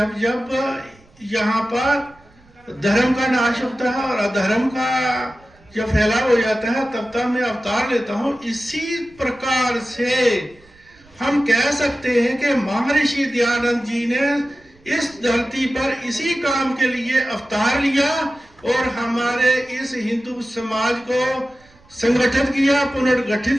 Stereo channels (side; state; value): right; noise; rumble, 29 dB below the sound